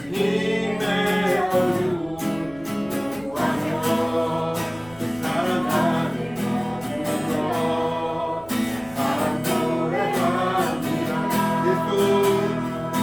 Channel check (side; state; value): right; noise; rumble, 23 dB below the sound